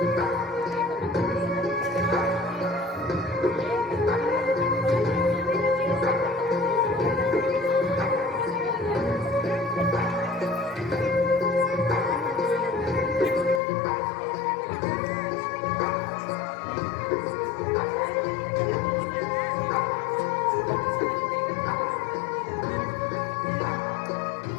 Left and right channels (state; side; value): drops out; right; at 13.6 s